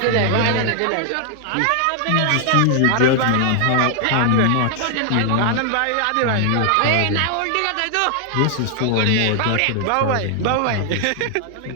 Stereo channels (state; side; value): different; both; correlation 0.00